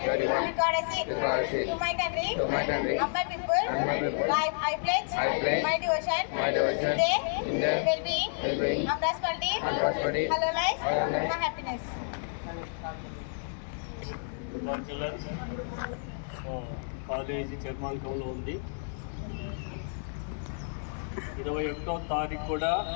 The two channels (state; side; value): silent; right; digital silence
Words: courtesy to my country and my people. I pledge my devotion today, well-being, and prosperity, hello life, and happiness. College చర్మాంకంలో ఉంది. 21వ తారీఖు కూడా